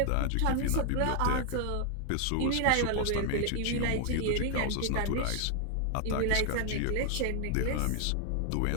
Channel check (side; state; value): both; different; correlation 0.00